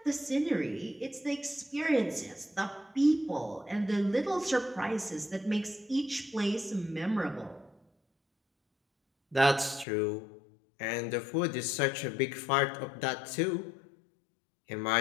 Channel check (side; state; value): right; drops out; at 9.9 s